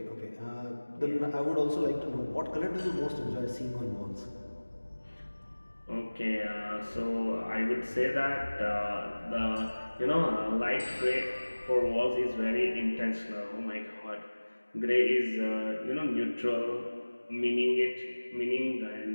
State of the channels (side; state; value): both; inverted; correlation -1.00